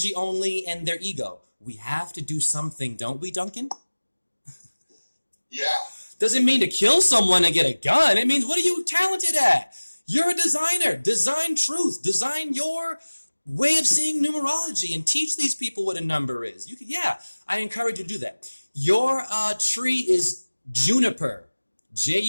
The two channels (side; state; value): both; inverted; correlation -1.00